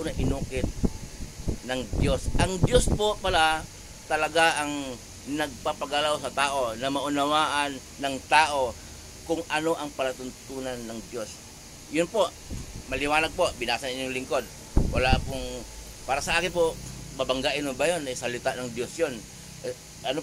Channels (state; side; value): identical; both; correlation 1.00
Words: na inukit ng Diyos. Ang Diyos po pala talaga ang nagpapagalaw sa tao na maunawaan ng tao kung ano ang palatuntunan ng Diyos. Yun po, maliwanag po, binasa niyo yung lingkod. Wala pong, para sa akin po, babanggain mo ba yun? Salita ng Diyos yun.